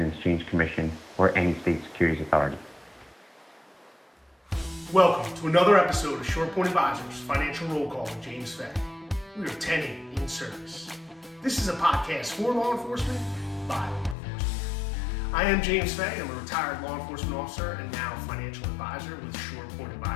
Exchange Commission or any state securities authority. Welcome to another episode of SurePoint Advisors Financial Roll Call with James Fay. We are 10-8 in service. This is a podcast for law enforcement by law enforcement. I am James Fay. I'm a retired law enforcement officer and now financial advisor with SurePoint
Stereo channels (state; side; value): drops out; right; at 14.2 s